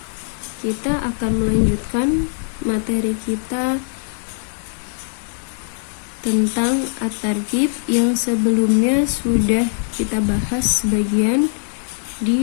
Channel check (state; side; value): silent; right; digital silence